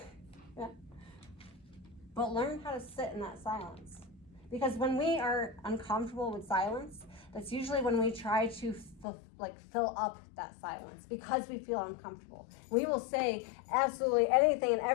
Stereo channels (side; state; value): right; drops out; at 9.1 s